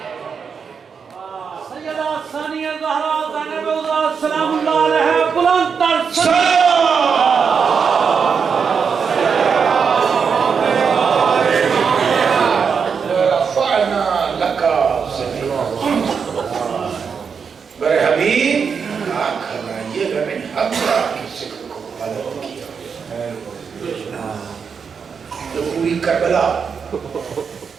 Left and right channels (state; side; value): quieter; left; 6.2 dB